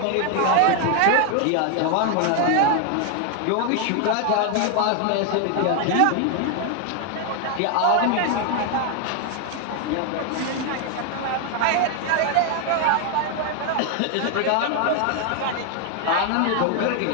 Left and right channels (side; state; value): both; different; correlation 0.01